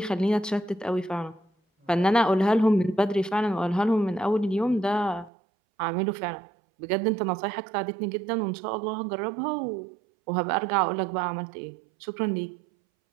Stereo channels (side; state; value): left; drops out; at 5.3 s